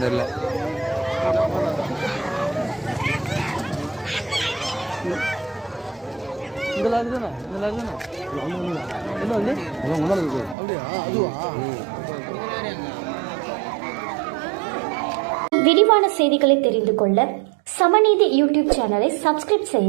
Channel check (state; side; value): drops out; left; at 10.6 s